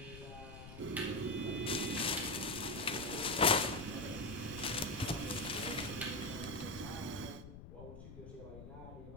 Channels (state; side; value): noise; left; rumble, 13 dB below the sound